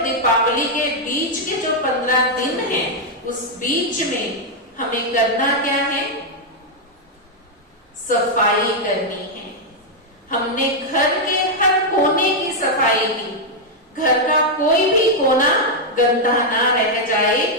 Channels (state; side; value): normal; both; correlation -0.02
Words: दीपावली के बीच के जो 15 दिन हैं, उस बीच में हमें करना क्या है? सफाई करनी है। हमने घर के हर कोने की सफाई की। घर का कोई भी कोना गंदा ना रह जाए,